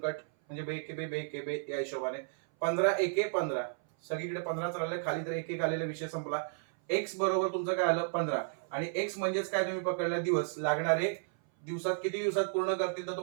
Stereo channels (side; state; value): left; silent; 56 dB below the other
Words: म्हणजे बे के बे या हिशोबाने. 15 एके 15, सगळीकडे 15च राहिले, खाली तर एक आलेला, विषय संपला. एक्स बरोबर तुमचं काय आलं? 15. आणि एक्स म्हणजेच काय? तुम्ही पकडला दिवस. लागणारे दिवसात किती दिवसात पूर्ण करतील? तर